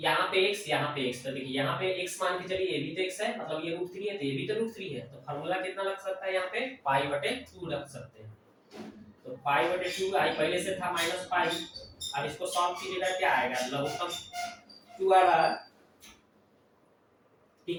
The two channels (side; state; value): both; identical; correlation 1.00